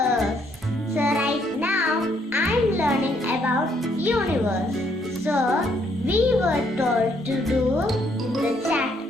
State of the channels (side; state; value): both; normal; correlation 0.70